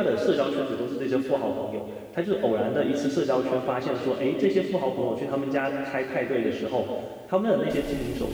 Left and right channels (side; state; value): both; identical; correlation 1.00